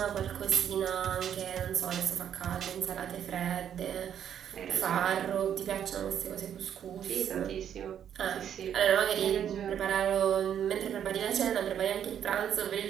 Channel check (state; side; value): quieter; left; 9.3 dB